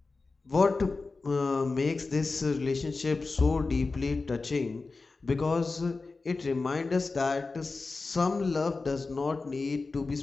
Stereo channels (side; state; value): right; quieter; 3.9 dB